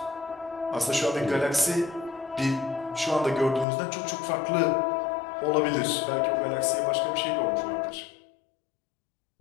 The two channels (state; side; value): drops out; right; at 3.7 s